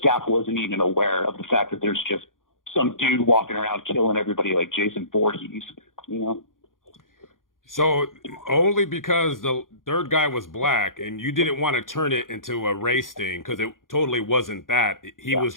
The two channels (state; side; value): late; right; 0.90 ms